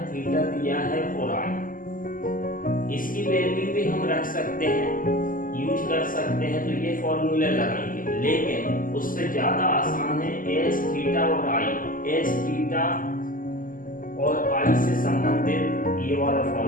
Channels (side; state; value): right; late; 0.40 ms